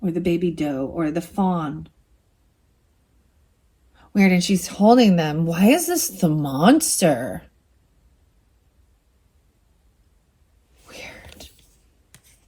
Or the baby doe. Or the fawn. Weird, and she's holding them. Why is this the monster? Weird.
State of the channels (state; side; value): identical; both; correlation 1.00